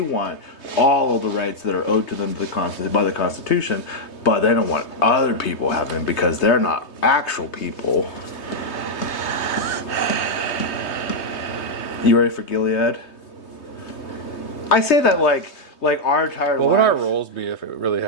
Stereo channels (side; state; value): right; late; 3.2 ms